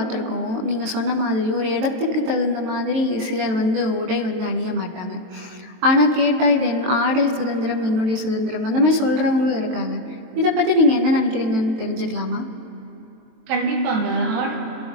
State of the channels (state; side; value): late; left; 23 ms